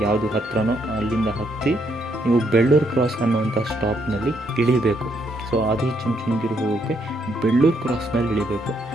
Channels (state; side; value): normal; both; correlation 0.74